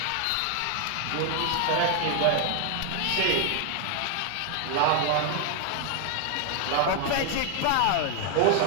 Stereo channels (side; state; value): both; different; correlation 0.01